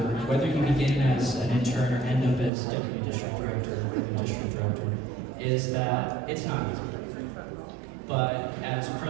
whether you begin as an intern or end up as deputy district director or even district director, is that it's not easy. But as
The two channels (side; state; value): left; drops out; at 2.5 s